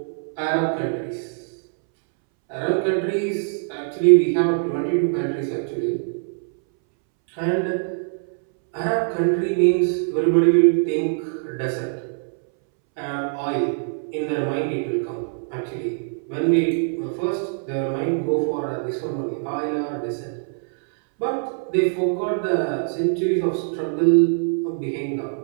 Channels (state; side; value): silent; left; 63 dB below the other